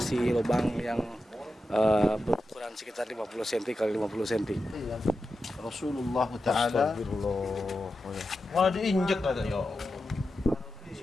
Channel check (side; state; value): both; normal; correlation 0.90